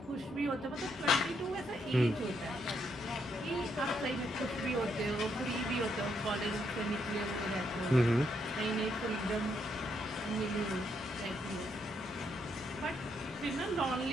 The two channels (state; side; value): normal; both; correlation 0.76